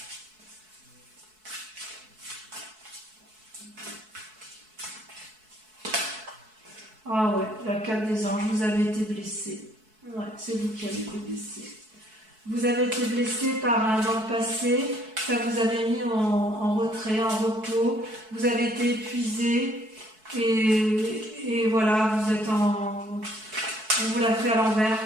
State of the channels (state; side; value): late; left; 4.6 ms